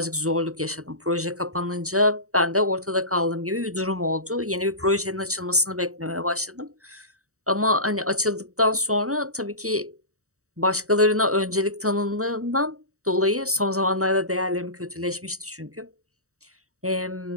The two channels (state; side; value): late; left; 0.65 ms